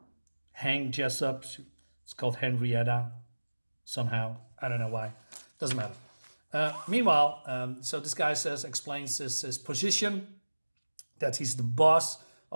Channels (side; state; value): both; inverted; correlation -1.00